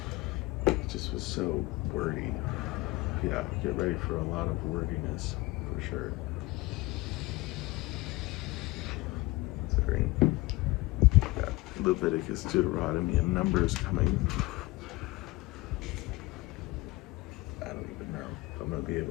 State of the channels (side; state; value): right; quieter; 21.2 dB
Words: It just was so wordy. Yeah, get ready for a lot of wordiness, for sure. Considering got Leviticus, Deuteronomy, and Numbers coming. I don't even know if I'm going to be